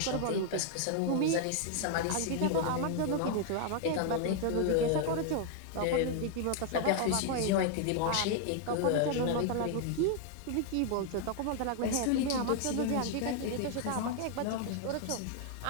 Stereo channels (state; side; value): different; both; correlation 0.00